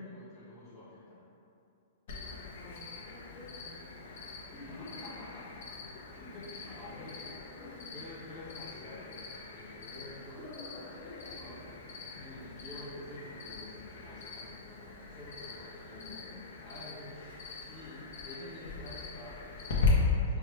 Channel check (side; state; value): right; quieter; 3.2 dB